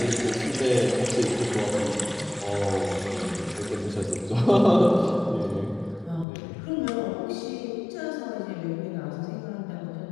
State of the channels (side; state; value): right; drops out; at 6.2 s